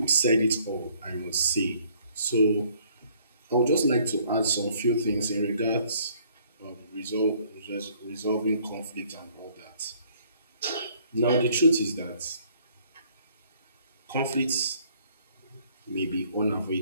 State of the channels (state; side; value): inverted; both; correlation -0.62